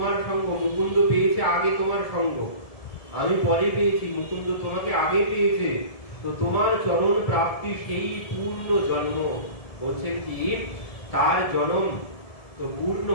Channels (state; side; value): late; right; 1.7 ms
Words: সঙ্গ, মুকুন্দ পেয়েছে আগে তোমার সঙ্গ, আমি পরে পেয়েছি, মুকুন্দ তোমাকে আগে পেয়েছে, তো তোমার চরণ প্রাপ্তি সেই পূর্ণ জন্ম। বলছেন কি তার জন্ম তো পূর্ণ